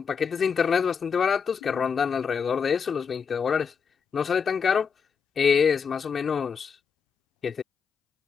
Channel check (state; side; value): quieter; right; 6.3 dB